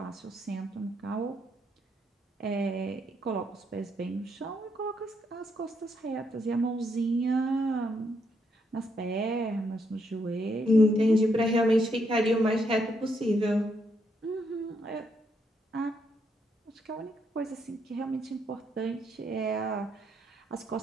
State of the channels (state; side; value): normal; both; correlation 0.76